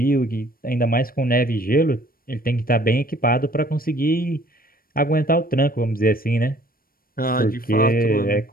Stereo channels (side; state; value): right; late; 0.42 ms